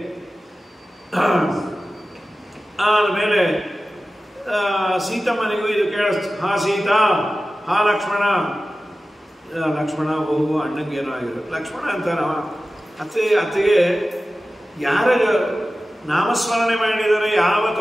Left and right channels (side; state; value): both; normal; correlation 0.95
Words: ಆಮೇಲೆ ಸೀತಮ್ಮನಿಗೂ ಇದು ಕೇಳಿಸ್ತು. ಹಾ ಸೀತಾ, ಹಾ ಲಕ್ಷ್ಮಣ. ಲಕ್ಷ್ಮಣ ಹೋಗು, ಅಣ್ಣಂಗೇನೋ ಆಗಿರೋ ಲಕ್ಷ್ಮಣ ಅಂತಾನ. ಅತ್ತಿಗೆ ಯಾರ ನಾಮಸ್ಮರಣೆ ಮಾಡಿದರೆ ಯಾವ